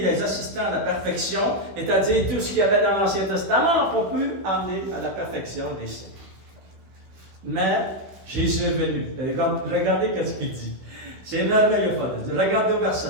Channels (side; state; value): left; late; 16 ms